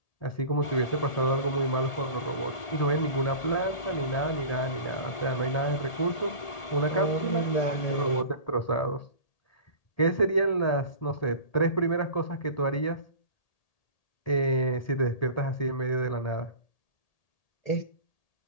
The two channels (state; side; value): late; right; 1.8 ms